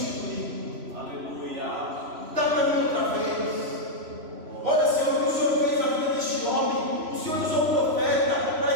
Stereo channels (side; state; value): left; late; 3.0 ms